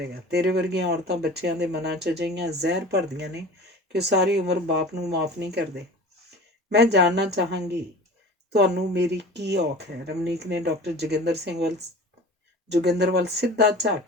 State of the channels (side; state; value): both; normal; correlation 0.38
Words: ਤੇਰੇ ਵਰਗੀਆਂ ਔਰਤਾਂ ਬੱਚਿਆਂ ਦੇ ਮਨਾਂ 'ਚ ਅਜਿਹੀਆਂ ਜ਼ਹਿਰ ਭਰਦੀਆਂ ਨੇ ਕਿ ਉਹ ਸਾਰੀ ਉਮਰ ਬਾਪ ਨੂੰ ਮਾਫ਼ ਨਹੀਂ ਕਰਦੇ। ਮੈਂ ਜਾਣਨਾ ਚਾਹਾਂਗੀ ਤੁਹਾਨੂੰ ਮੇਰੀ ਕੀ ਔਖ ਹੈ? ਰਮਨੀਕ ਨੇ ਡਾਕਟਰ ਜੋਗਿੰਦਰ ਵੱਲ ਸਿੱਧਾ ਝਾਕ